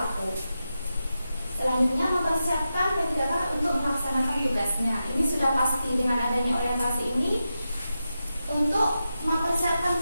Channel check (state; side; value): inverted; both; correlation -0.90